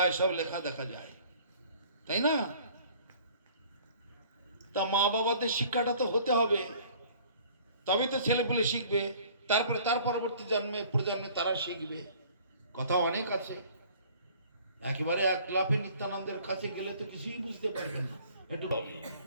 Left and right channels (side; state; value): both; inverted; correlation -0.53